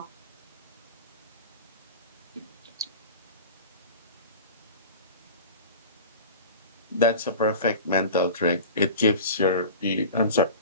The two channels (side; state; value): both; inverted; correlation -0.35